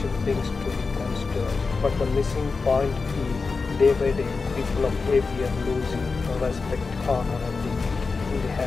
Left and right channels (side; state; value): right; quieter; 4.4 dB